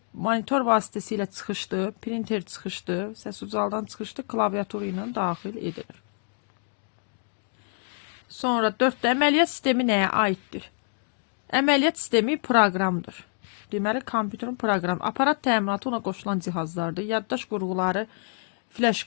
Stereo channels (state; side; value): silent; right; 60 dB below the other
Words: Monitor vasitəsilə çıxışdı, printer çıxışdı, səs ucaldan çıxışdı, klaviatura ilə daxil edilir. Sonra 4-də əməliyyat sistemi nəyə aiddir? Əməliyyat sistemi proqramdır. Deməli, kompüterin proqramı. Aparat təminatı ona qoşulan cihazlardır. Yaddaş qurğuları, flash